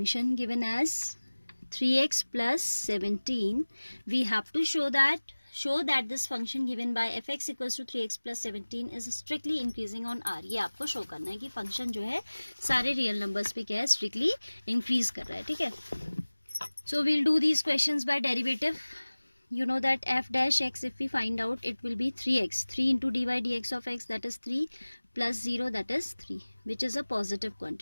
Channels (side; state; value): both; inverted; correlation -1.00